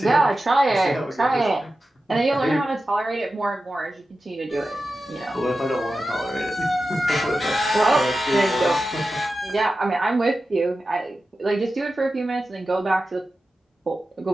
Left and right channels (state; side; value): normal; both; correlation 0.93